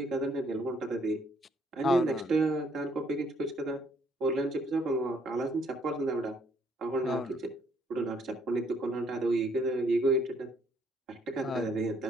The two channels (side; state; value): both; normal; correlation 0.67